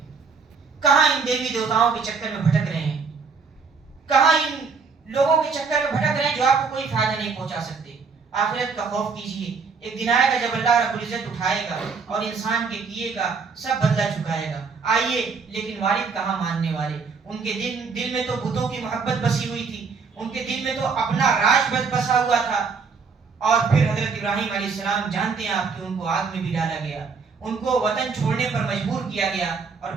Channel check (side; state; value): left; quieter; 5.1 dB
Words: کہاں ان دیوی دیوتاؤں کے چکر میں بھٹک رہے ہیں، کہاں ان لوگوں کے چکر میں بھٹک رہے ہیں جو آپ کو کوئی فائدہ نہیں پہنچا سکتے۔ آخرت کا خوف کیجئے، ایک دن آئے گا جب اللہ رب العزت اٹھائے گا اور انسان کے کیے کا سب بدلہ چکائے گا۔ آئیے، لیکن والد کہاں ماننے والے، ان کے دل میں تو بتوں کی محبت بسی ہوئی تھی، ان کے دل میں تو اپنا راج بسا ہوا تھا۔ اور پھر حضرت ابراہیم علیہ السلام جانتے ہیں آپ کہ ان کو آگ میں بھی ڈالا گیا، ان کو وطن چھوڑنے پر مجبور کیا گیا، اور